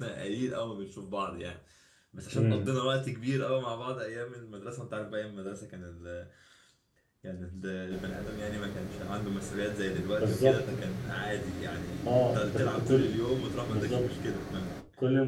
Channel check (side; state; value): both; identical; correlation 1.00